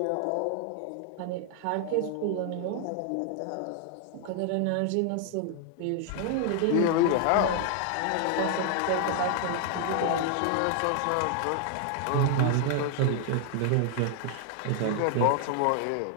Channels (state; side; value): different; both; correlation 0.00